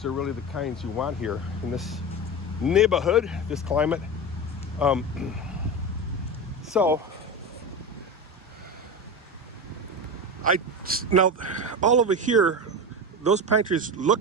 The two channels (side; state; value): both; normal; correlation 0.22